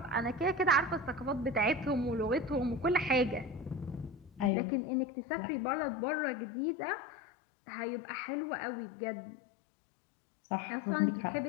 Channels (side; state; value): right; drops out; at 4.5 s